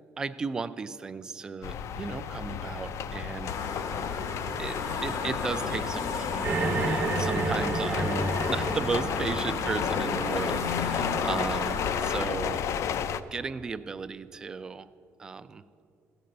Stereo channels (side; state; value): both; normal; correlation 0.52